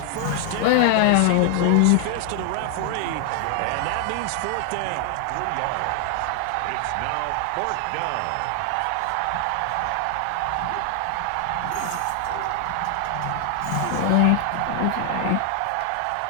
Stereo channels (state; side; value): different; both; correlation 0.00